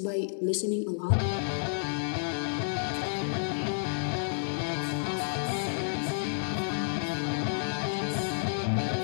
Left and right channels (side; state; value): right; silent; 57 dB below the other